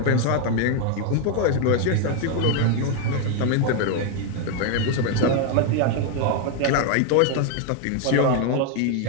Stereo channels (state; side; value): different; both; correlation 0.01